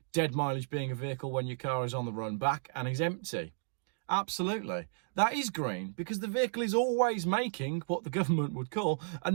Dead mileage being a vehicle when your car is on the run back and is empty. Absolutely. That is green because the vehicle is always making what the government would call a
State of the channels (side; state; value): left; silent; digital silence